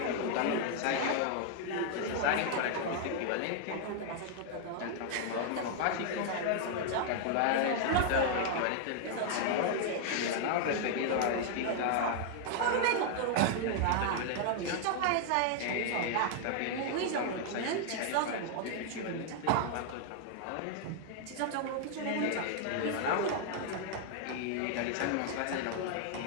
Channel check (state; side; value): different; both; correlation 0.00